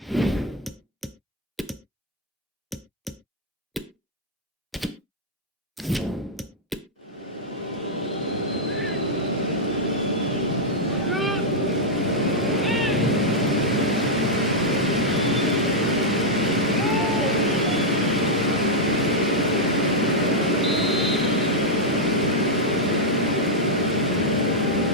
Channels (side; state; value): both; normal; correlation -0.04